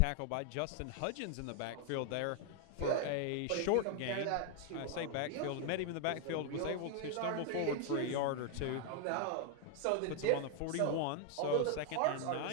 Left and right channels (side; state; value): both; different; correlation 0.00